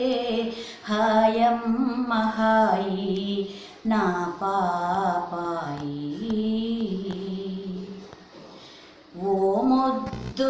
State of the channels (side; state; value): both; identical; correlation 1.00